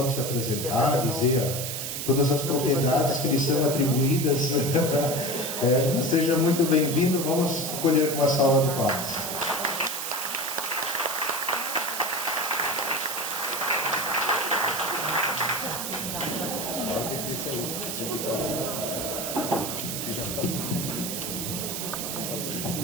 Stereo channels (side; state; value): right; noise; hiss, 4 dB below the sound